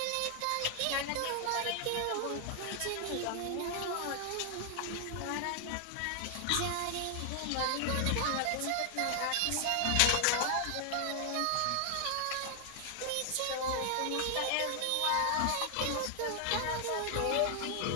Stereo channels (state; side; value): different; both; correlation 0.00